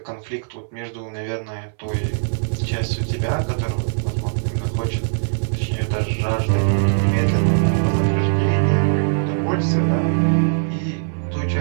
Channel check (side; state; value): left; silent; 63 dB below the other